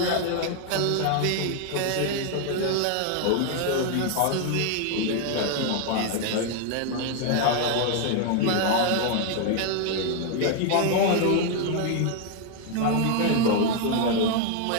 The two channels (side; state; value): both; different; correlation 0.00